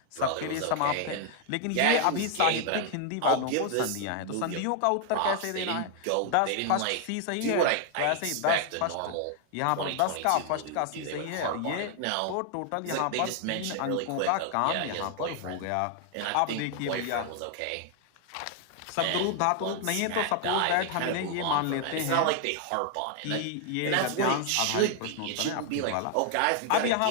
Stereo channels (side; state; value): both; different; correlation 0.00